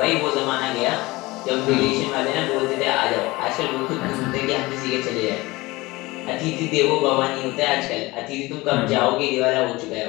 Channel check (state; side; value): quieter; right; 21.2 dB